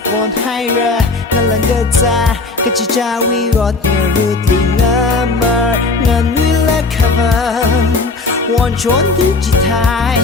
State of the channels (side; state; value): right; quieter; 3.7 dB